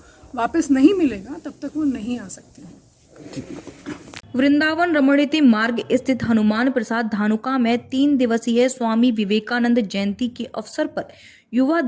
वापस नहीं मिलेगा, तब तक वो नहीं आ सकते हैं। वृंदावन रमणीति मार्ग स्थित हनुमान प्रसाद धानुका में 3 दिवसीय स्वामी विवेकानंद जयंती के अवसर पर युवा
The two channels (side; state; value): both; identical; correlation 1.00